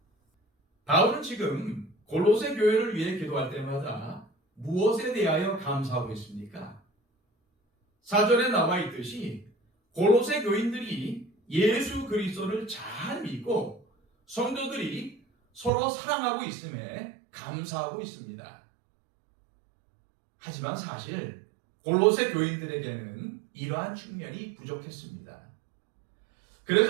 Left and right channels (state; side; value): drops out; left; at 15.7 s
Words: 바울은 지금 골로새 교회를 위해 기도할 때마다 무엇에 대하여 감사하고 있습니까? 4절에 나와 있듯이 골로새 교인들이 예수 그리스도를 잘 믿고 성도들이 서로 사랑하고 있음에 감사하고 있습니다. 하지만 사실 골로새 교인들에게는 이러한 측면이 부족했습니다.